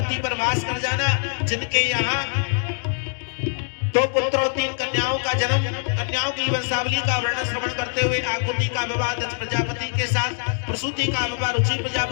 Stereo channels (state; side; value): silent; right; digital silence